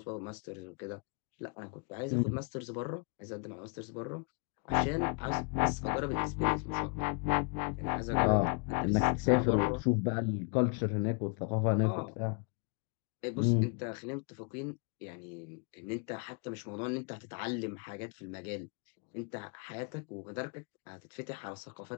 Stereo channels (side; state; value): right; quieter; 36.6 dB